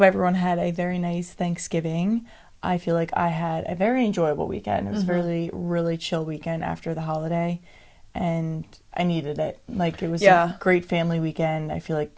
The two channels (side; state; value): both; identical; correlation 1.00